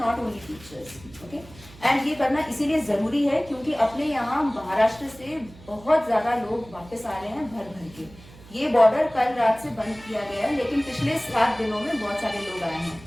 only teachers. Okay, and ये करना इसीलिए जरूरी है क्योंकि अपने यहाँ महाराष्ट्र से बहुत ज्यादा लोग वापस आ रहे हैं भर भर के। ये बॉर्डर कल रात से बंद किया गया है, लेकिन पिछले 7 दिनों में बहुत सारे लोग आए हैं।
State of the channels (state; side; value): noise; right; hum, 21 dB below the sound